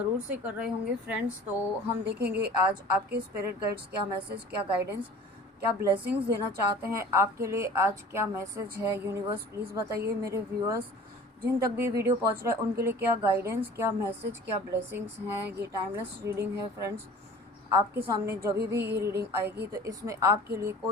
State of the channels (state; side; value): normal; both; correlation 0.44